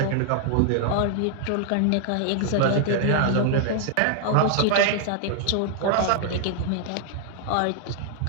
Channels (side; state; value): both; different; correlation 0.00